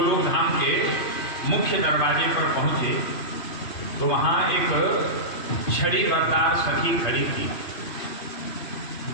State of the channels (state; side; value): late; right; 3.2 ms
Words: धाम के मुख्य दरवाजे पर पहुंचे तो वहां एक छड़ी बरदार सखी खड़ी थी